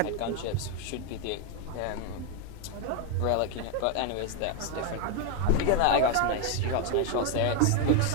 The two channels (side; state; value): both; different; correlation 0.01